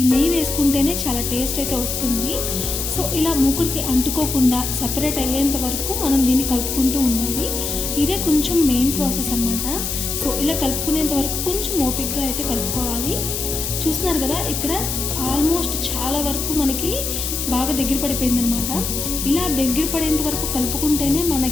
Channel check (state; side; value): noise; left; hiss, 3 dB below the sound